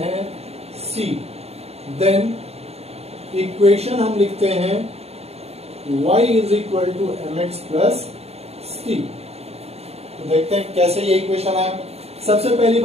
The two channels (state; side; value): late; left; 0.30 ms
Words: है c। देन इक्वेशन हम लिखते हैं y is equal to mx plus c। तो देखते हैं कैसे ये इक्वेशन आया। सबसे पहली